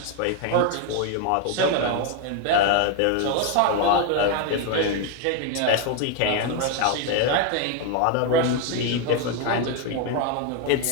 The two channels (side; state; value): both; different; correlation 0.01